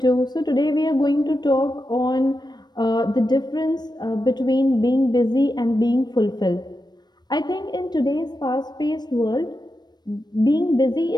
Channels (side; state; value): right; late; 0.20 ms